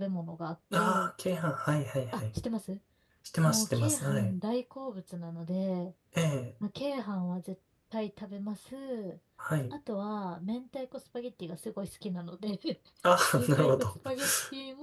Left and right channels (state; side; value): identical; both; correlation 1.00